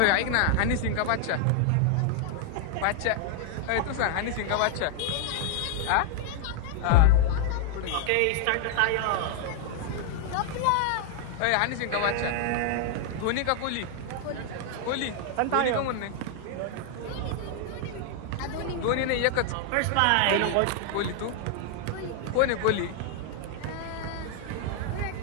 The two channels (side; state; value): both; different; correlation 0.00